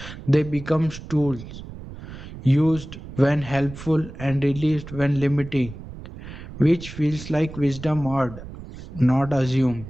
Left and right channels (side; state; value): right; noise; rumble, 13 dB below the sound